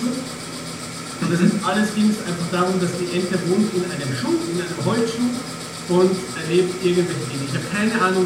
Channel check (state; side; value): identical; both; correlation 1.00